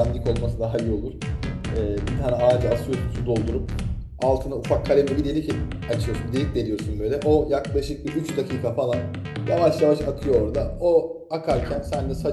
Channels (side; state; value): both; identical; correlation 1.00